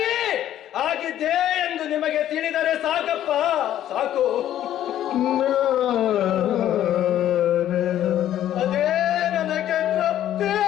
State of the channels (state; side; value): quieter; right; 11.8 dB